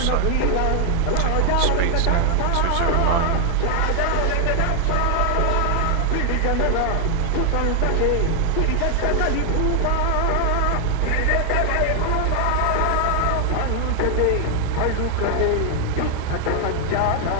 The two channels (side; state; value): both; different; correlation 0.00